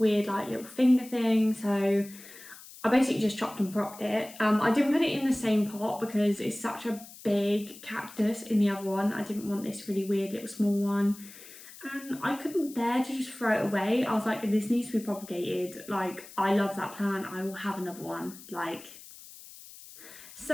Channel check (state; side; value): noise; left; hiss, 18 dB below the sound